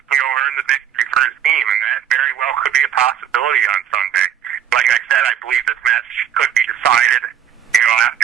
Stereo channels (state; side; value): quieter; left; 9.4 dB